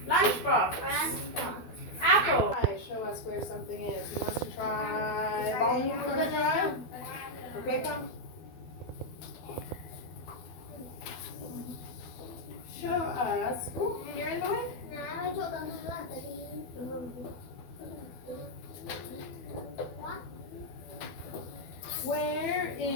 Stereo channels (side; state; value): right; late; 12 ms